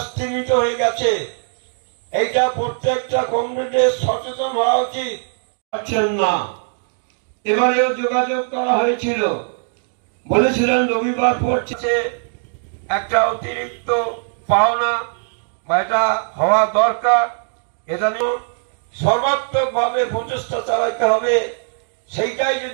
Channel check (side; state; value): left; silent; digital silence